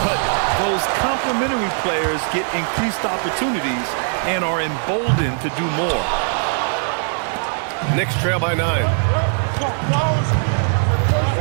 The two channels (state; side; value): silent; left; 66 dB below the other